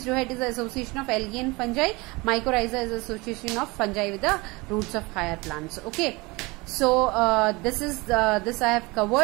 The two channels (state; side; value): quieter; left; 24.3 dB